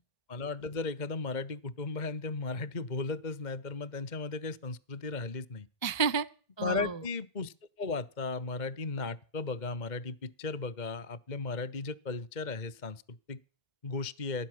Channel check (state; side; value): late; right; 1.3 ms